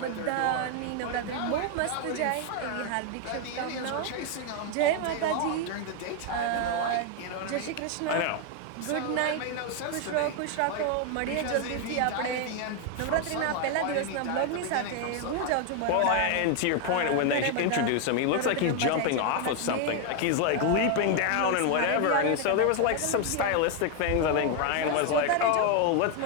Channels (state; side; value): different; both; correlation 0.01